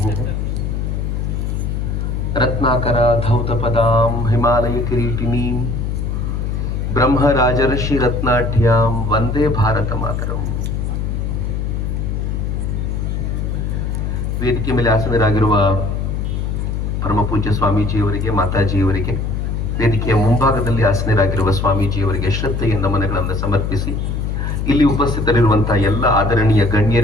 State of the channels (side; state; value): left; noise; hum, 1 dB below the sound